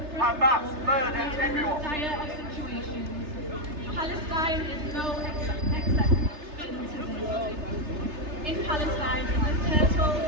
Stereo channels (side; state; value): left; late; 3.3 ms